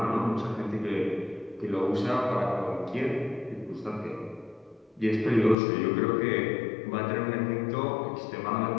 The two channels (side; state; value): right; drops out; at 5.6 s